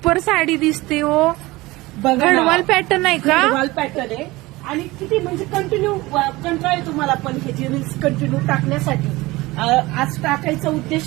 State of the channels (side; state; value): left; quieter; 20.6 dB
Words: साडी दिसते हो. बघा ना. गडवाल पॅटर्न आहे का? गडवाल पॅटर्न आहे आणि किती म्हणजे कंटिन्यू कंटाळा आहे तुम्हाला पण ह्याची रील्स कंटिन्यू टाकण्यासाठी. आज टाकायचा